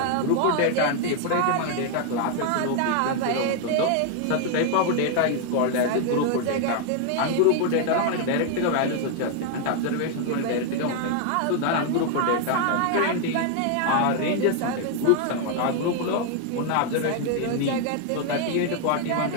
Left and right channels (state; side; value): different; both; correlation 0.00